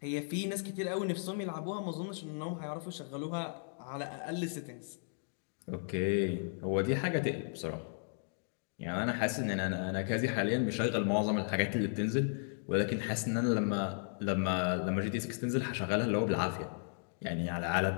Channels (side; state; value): right; silent; digital silence